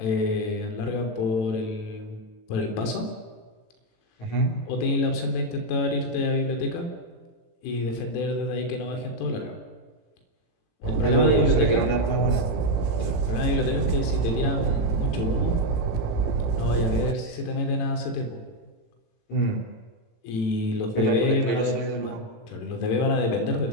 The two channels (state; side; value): late; right; 18 ms